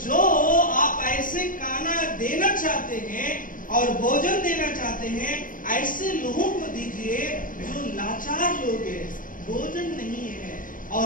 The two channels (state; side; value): late; right; 0.39 ms